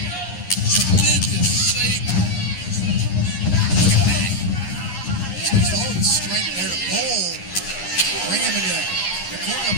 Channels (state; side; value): late; right; 11 ms